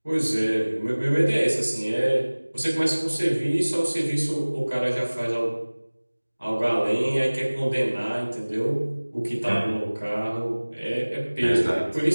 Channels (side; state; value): both; inverted; correlation -1.00